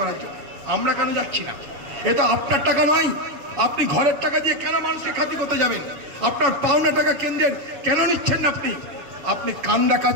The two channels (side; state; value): left; late; 7.2 ms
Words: জন্য। আমরা কেন যাচ্ছি না? এটা আপনার টাকা নয়। আপনি ঘরের টাকা দিয়ে কেন মানুষকে খাতি করতে যাবেন? আপনার পাওনা টাকা কেন্দ্রের কেন নিচ্ছেন না? আপনি